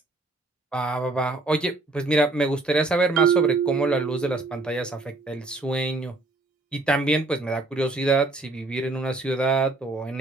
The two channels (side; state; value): left; quieter; 3.0 dB